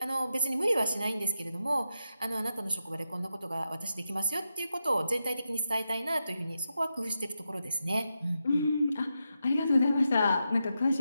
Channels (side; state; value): both; inverted; correlation -0.87